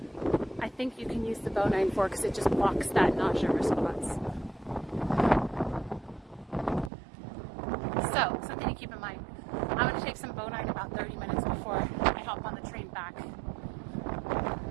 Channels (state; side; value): drops out; left; at 6.9 s